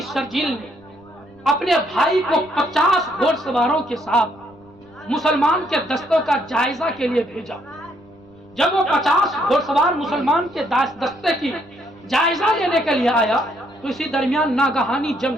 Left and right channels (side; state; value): left; noise; rumble, 29 dB below the sound